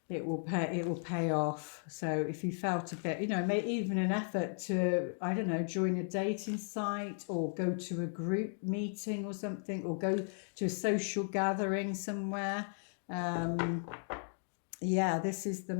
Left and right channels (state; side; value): silent; right; digital silence